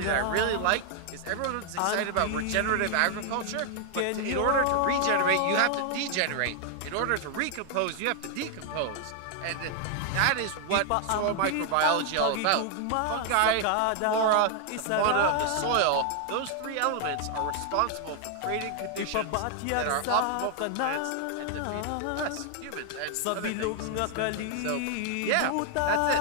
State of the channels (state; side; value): different; both; correlation 0.00